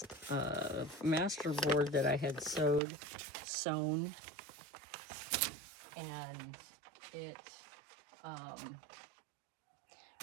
master board that I had sewn, and it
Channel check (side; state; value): left; drops out; at 2.8 s